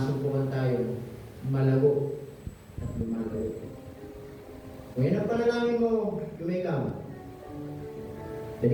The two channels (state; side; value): identical; both; correlation 1.00